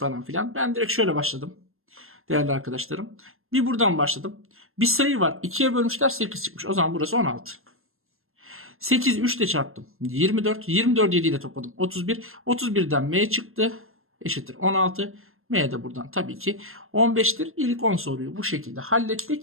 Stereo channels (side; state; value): left; late; 0.61 ms